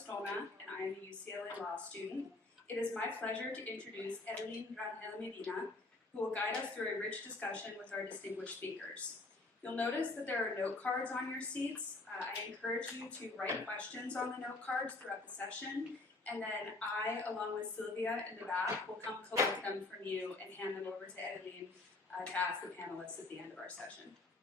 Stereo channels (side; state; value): right; quieter; 3.1 dB